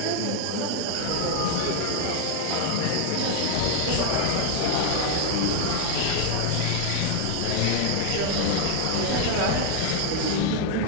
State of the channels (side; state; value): both; different; correlation 0.01